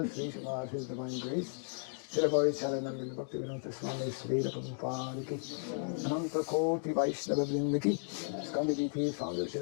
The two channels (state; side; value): silent; right; digital silence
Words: Sri Smarth, His Divine Grace, Shri Charanand Bhakti Vedanta Swami Sri Prabhupada ki, Ananta Koti Vaishnava Vrinda ki, Skandiviti Founder